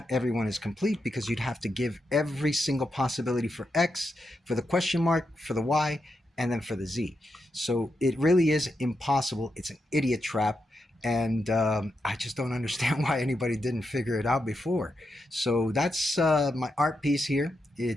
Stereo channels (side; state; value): both; normal; correlation 0.85